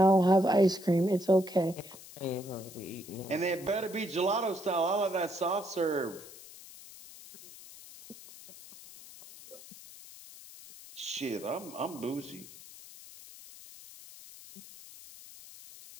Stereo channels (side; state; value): left; noise; hiss, 18 dB below the sound